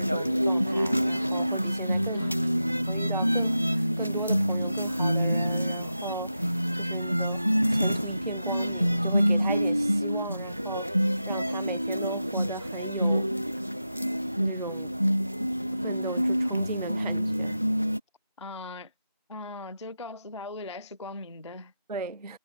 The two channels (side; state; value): both; inverted; correlation -0.89